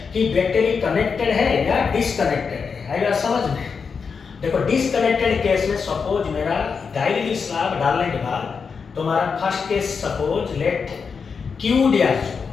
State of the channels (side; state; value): right; quieter; 5.6 dB